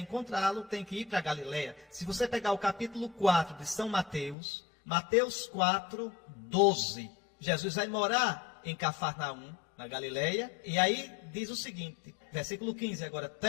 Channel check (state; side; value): drops out; right; at 4.4 s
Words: tem que ir para a Galileia. Se você pegar o capítulo 4 de São Mateus, Mateus 4, 12, Jesus vai morar em Cafarnaum, na Galileia, e aí diz o seguinte, versículo 15 agora,